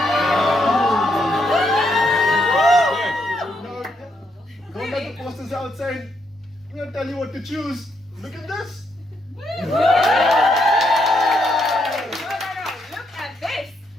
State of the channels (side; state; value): both; normal; correlation 0.77